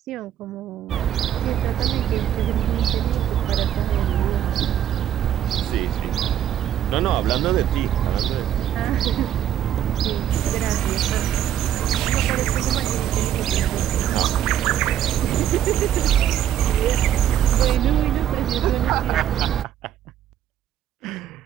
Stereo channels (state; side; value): quieter; left; 10.7 dB